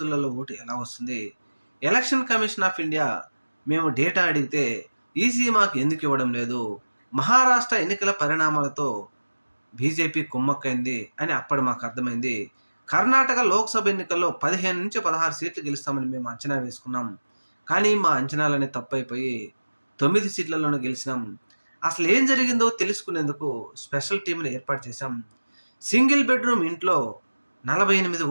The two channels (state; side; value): inverted; both; correlation -1.00